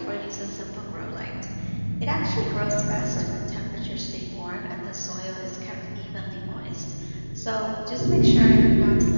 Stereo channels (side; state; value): both; inverted; correlation -1.00